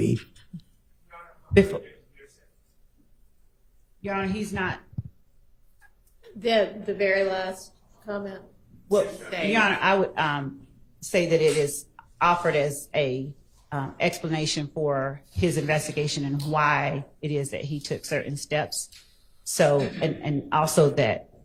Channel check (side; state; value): both; identical; correlation 1.00